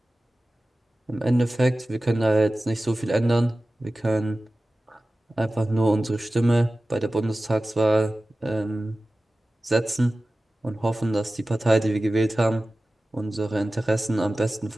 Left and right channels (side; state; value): both; normal; correlation 0.96